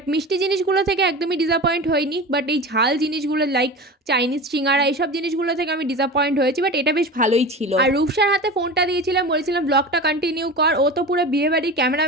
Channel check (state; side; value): normal; both; correlation 0.31